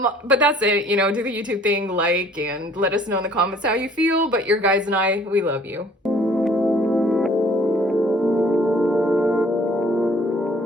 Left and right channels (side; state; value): both; normal; correlation 0.56